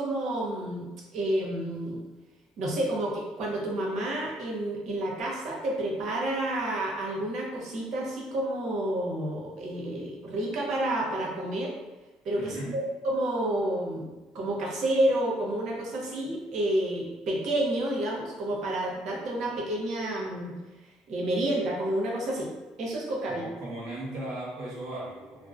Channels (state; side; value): normal; both; correlation 0.66